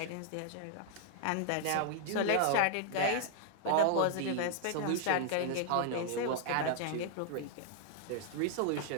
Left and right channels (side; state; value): both; different; correlation -0.01